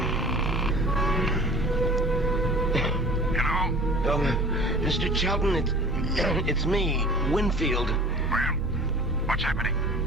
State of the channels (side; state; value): both; normal; correlation 0.43